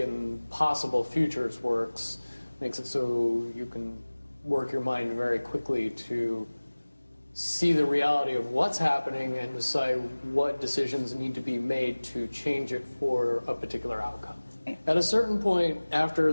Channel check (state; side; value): inverted; both; correlation -1.00